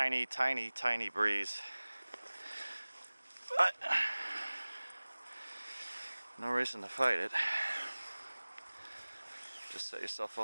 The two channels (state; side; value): inverted; both; correlation -1.00